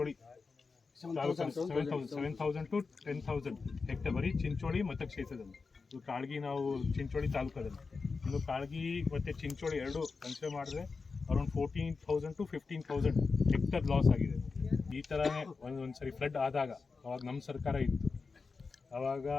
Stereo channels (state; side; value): quieter; right; 4.6 dB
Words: 7,000 to 10,000 ಹೆಕ್ಟರ್ ಬರೀ ಚಿಂಚೋಳಿ ಮತಕ್ಷೇತ್ರದಲ್ಲಿ. ಇದು ಕಾಳಗಿ ನಾವು ಚಿಂಚೋಳಿ ತಾಲೂಕದಲ್ಲಿ. ಇನ್ನು ಕಾಳಗಿ ಮತ್ತು ಚಿಂಚೋಳಿ ಎರಡು ಕನ್ಸಿಡರ್ ಮಾಡಿದ್ರೆ ಅರೌಂಡ್ 14,000 to 15,000 ಹೆಕ್ಟರ್ ಲಾಸ್ ಆಗಿದೆ. ಈ ಥರನೇ ಒಂದು ಸರಿ ಫ್ಲಡ್ ಆದಾಗ, ಅವಾಗ ನಮ್ಮ ಸರ್ಕಾರ ಇತ್ತು, ಆವಾಗ